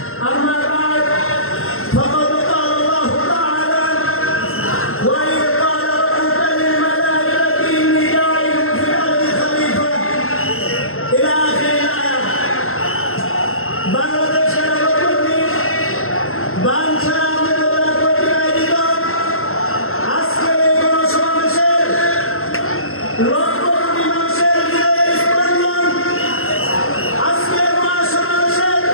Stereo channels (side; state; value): right; late; 0.62 ms